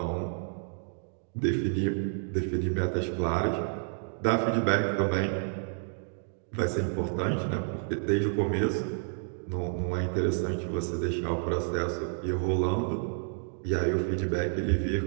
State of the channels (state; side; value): silent; left; digital silence